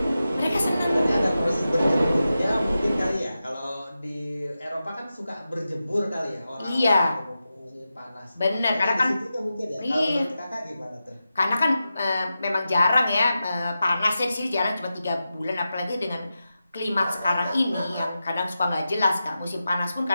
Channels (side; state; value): both; inverted; correlation -0.91